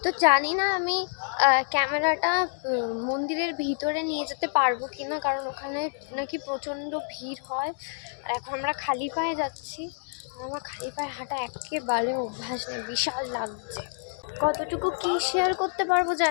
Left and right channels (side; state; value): right; silent; digital silence